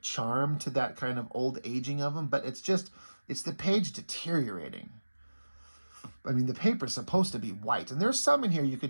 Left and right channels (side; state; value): both; inverted; correlation -1.00